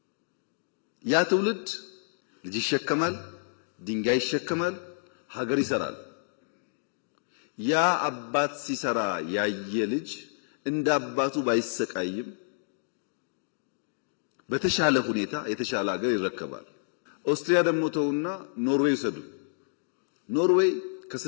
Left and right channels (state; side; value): silent; right; digital silence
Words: ያ ትውልድ ልጅ ይሸከማል፣ ድንጋይ ይሸከማል፣ ሀገር ይሰራል። ያ አባት ሲሰራ ያየ ልጅ እንደ አባቱ ባይሰቃይም በተሻለ ሁኔታ የተሻለ ሀገር ይረከባል። ኦስትሪያ ደግሞ ተውና ኖርዌይ ሰዱ። ኖርዌይ